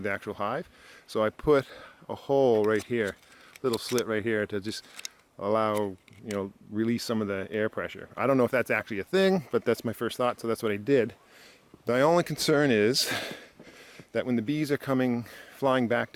actual hive. So I put a hole right here, little slit right here to just allow, release some of the air pressure. I don't know if that's actually a thing, but that's my first thought, so that's what I did. My only concern is that when the bees are flying back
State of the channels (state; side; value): identical; both; correlation 1.00